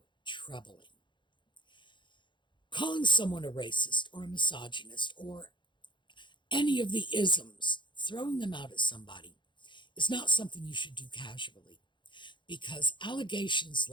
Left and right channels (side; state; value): right; late; 0.23 ms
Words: troubling. Calling someone a racist or a misogynist or any of the isms, throwing them out at somebody, is not something you should do casually, because allegations